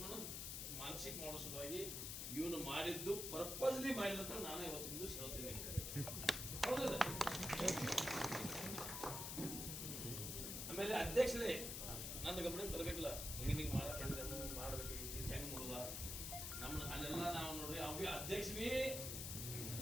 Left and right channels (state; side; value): noise; left; hiss, 3 dB below the sound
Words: ಮಾನಸಿಕ ಮಾಡೋ ಸಲುವಾಗಿ ಇವನು ಮಾಡಿದ್ದು ಪರ್ಪಸ್ಲಿ ಮಾಡಿದಂತ ನಾನು ಇವತ್ತಿಂದು ಹೇಳ್ತೀನಿ. ಹೌದಲ್ಲ? ಆಮೇಲೆ ಅಧ್ಯಕ್ಷರೇ ನನ್ನ ಗಮನಕ್ಕೆ ತರಬೇಕಲ್ಲ, ಹಿಂಗೆ ಮಾಡ್ಬೇಕು, ಹೆಂಗ್ ನೋಡುದ ನಮ್ಮ ಅಲ್ಲೆಲ್ಲ ನಾವು ನೋಡ್ರಿ ಅವಿ ಅಧ್ಯಕ್ಷ ಬಿ